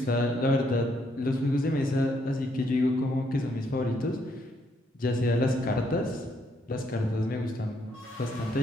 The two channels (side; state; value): both; normal; correlation 0.73